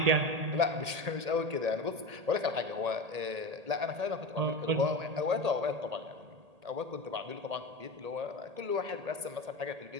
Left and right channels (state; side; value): late; left; 1.8 ms